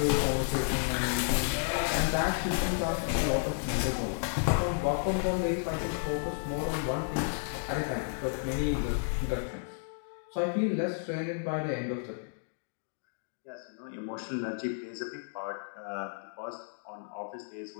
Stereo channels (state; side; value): silent; right; digital silence